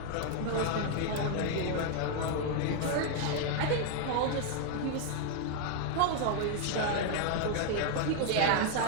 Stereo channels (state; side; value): different; both; correlation 0.00